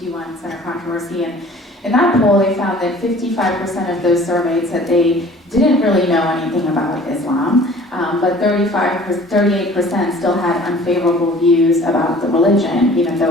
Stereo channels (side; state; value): both; normal; correlation 0.48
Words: Center controversy. And in that poll, they found that 55% of those surveyed said they didn't really know anything about Islam, but 38% still had unfavorable views about the religion, even